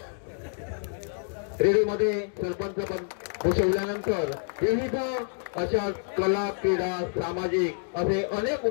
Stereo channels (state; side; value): silent; right; 59 dB below the other